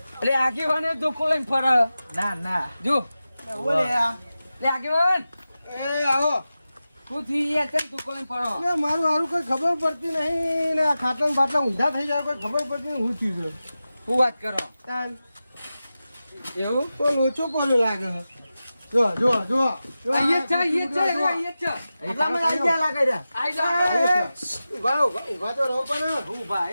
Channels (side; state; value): both; inverted; correlation -0.94